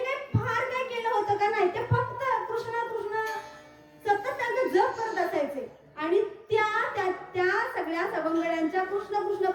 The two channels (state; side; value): identical; both; correlation 1.00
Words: काय फार काय केलं होतं का? नाही. ते फक्त कृष्ण कृष्ण सतत त्यांचं जप करत असायचे. आणि त्या सगळ्या सवंगड्यांच्या कृष्ण कृष्ण